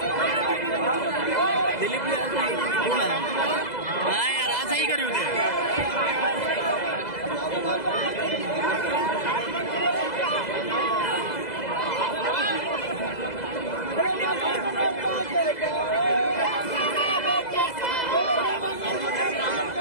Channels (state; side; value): late; right; 2.0 ms